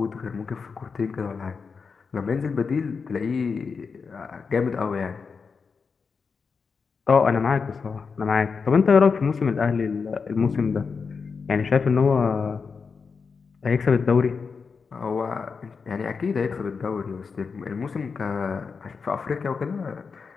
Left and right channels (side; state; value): right; quieter; 5.3 dB